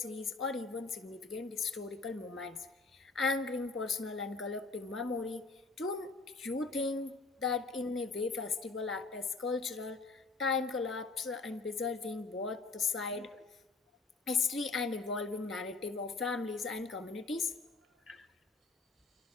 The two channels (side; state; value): right; quieter; 3.9 dB